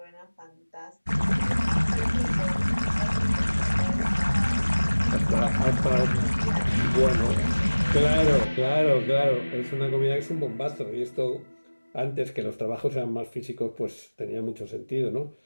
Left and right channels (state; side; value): inverted; both; correlation -1.00